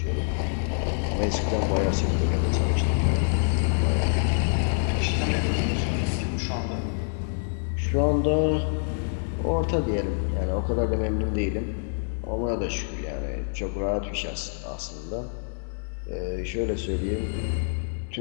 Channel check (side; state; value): right; silent; 61 dB below the other